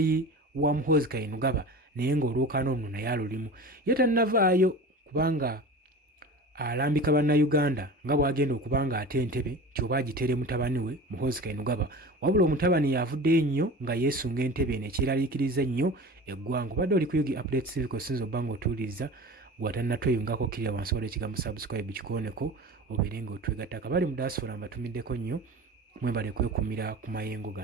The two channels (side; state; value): both; normal; correlation 0.35